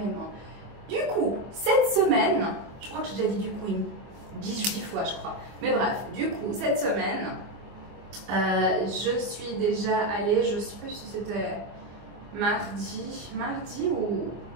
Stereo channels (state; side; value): late; left; 25 ms